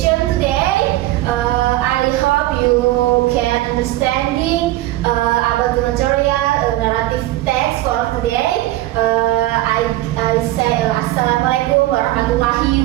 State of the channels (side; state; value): left; quieter; 16.4 dB